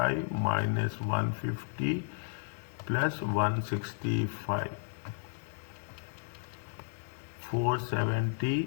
minus 150 plus 165.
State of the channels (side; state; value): right; silent; digital silence